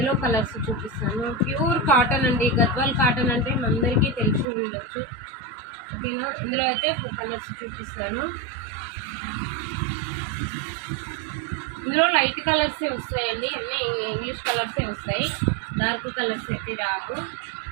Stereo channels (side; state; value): left; drops out; at 4.5 s